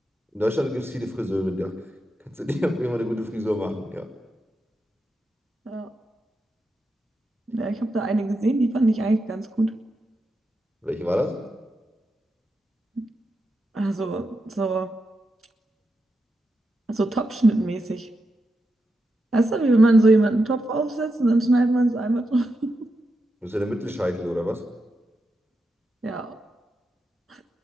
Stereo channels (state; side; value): normal; both; correlation 0.87